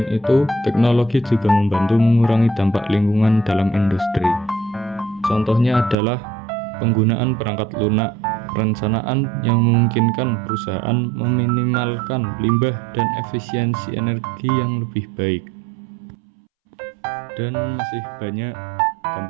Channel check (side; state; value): left; drops out; at 6.0 s